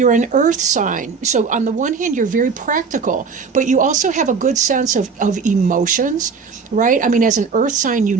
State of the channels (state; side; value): quieter; left; 5.3 dB